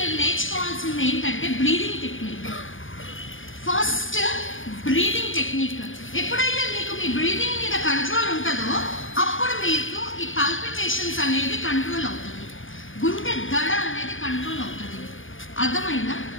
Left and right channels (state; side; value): late; right; 0.58 ms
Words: నేర్చుకోవాల్సింది ఏంటంటే breathing technique. First breathing technique. ఎప్పుడైతే మీకు మీ బ్రీదింగ్ మీద కంట్రోల్ ఉంటుందో అప్పుడు మీకు ఈ పల్పిటేషన్స్ అనేది కంట్రోల్ అవుతుంది, గుండె దడ అనేది కంట్రోల్ అవుతుంది. అర్థమైందా?